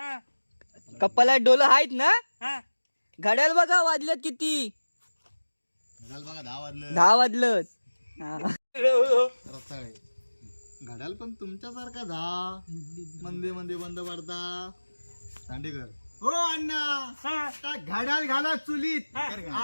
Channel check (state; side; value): inverted; both; correlation -1.00